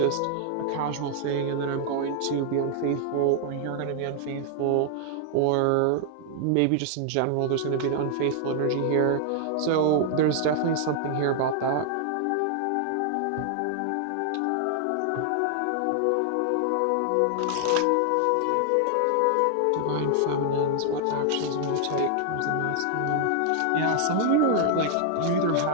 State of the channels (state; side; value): different; both; correlation 0.00